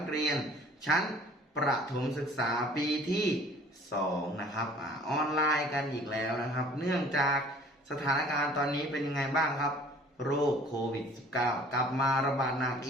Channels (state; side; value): normal; both; correlation 0.51